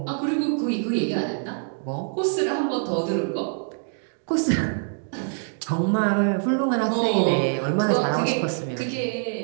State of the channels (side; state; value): left; silent; 62 dB below the other